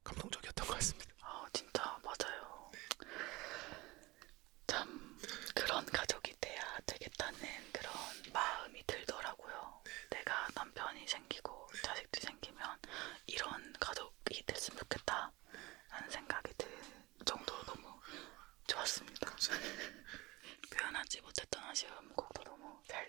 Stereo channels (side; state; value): left; quieter; 21.5 dB